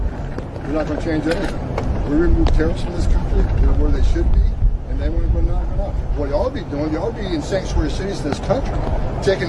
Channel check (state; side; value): identical; both; correlation 1.00